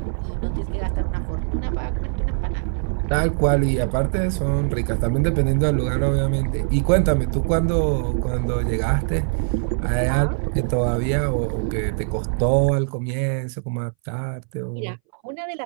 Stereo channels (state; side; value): silent; left; 62 dB below the other